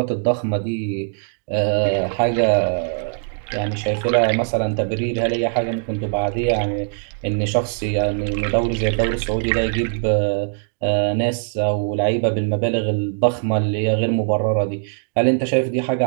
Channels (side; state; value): left; silent; digital silence